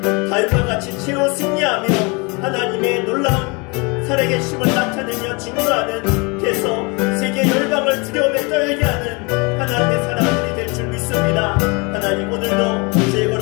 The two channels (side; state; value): right; quieter; 29.4 dB